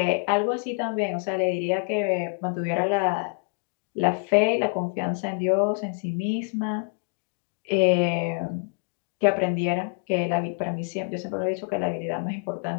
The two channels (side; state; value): right; quieter; 38.8 dB